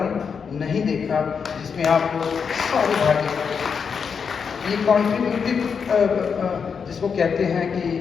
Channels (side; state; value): right; quieter; 6.2 dB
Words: नहीं देखा जिसमें आप सारे भाग ये कॉन्ट्रीब्यूटिव जिसको कहते हैं कि